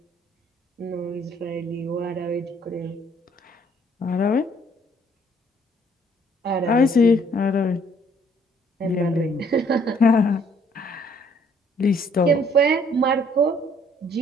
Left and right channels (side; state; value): both; normal; correlation 0.63